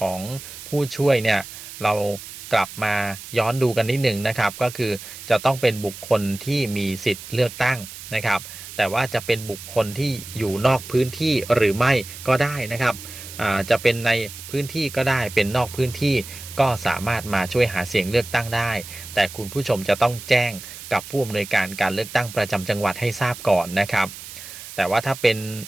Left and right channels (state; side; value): noise; right; hiss, 13 dB below the sound